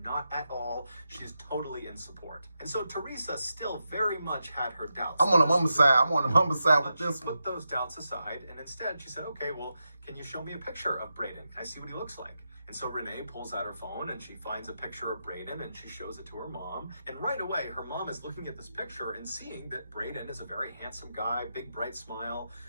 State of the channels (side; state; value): both; inverted; correlation -0.87